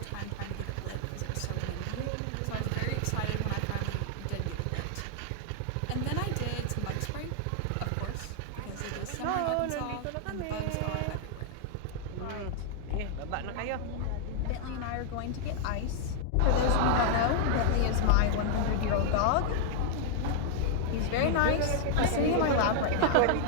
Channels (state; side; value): different; both; correlation 0.00